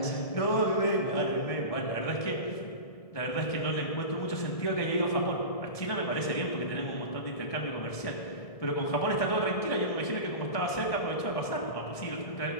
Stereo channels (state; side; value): late; right; 1.6 ms